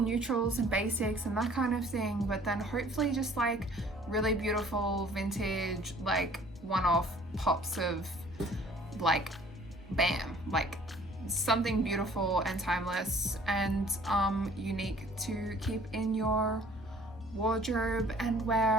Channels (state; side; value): normal; both; correlation 0.54